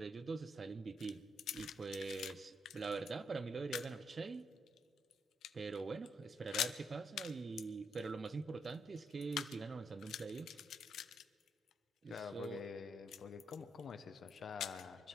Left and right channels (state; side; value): normal; both; correlation 0.78